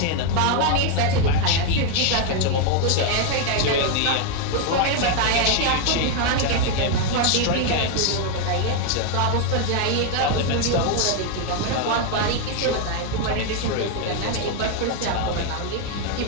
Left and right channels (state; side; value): different; both; correlation 0.01